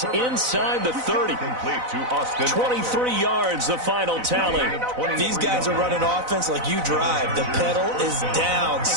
inside the 30. Complete to Austin. 23 yards, the final tally. These guys are running offense like you drive. The pedal is down,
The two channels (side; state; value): left; late; 4.0 ms